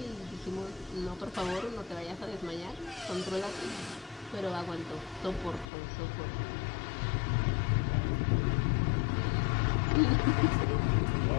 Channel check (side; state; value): right; drops out; at 5.7 s